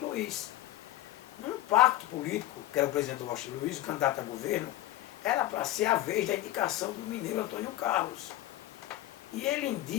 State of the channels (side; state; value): right; quieter; 14.8 dB